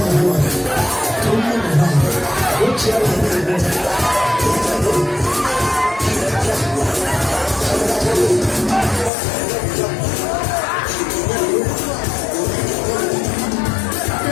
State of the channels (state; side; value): drops out; right; at 9.1 s